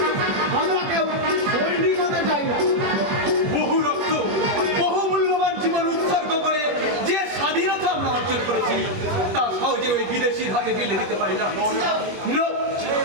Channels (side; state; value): left; late; 21 ms